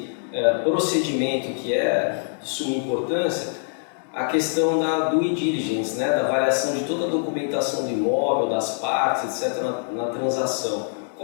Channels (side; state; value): right; silent; 63 dB below the other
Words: procedimento que é de suma importância, a questão da due diligence, né, da avaliação de toda a documentação do imóvel, das partes, etc., na transação.